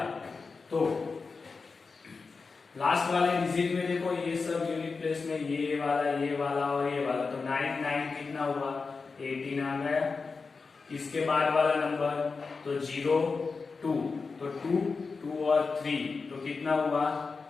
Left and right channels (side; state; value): right; quieter; 4.5 dB